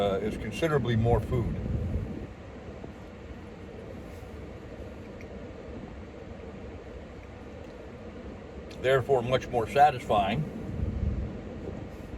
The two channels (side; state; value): both; identical; correlation 1.00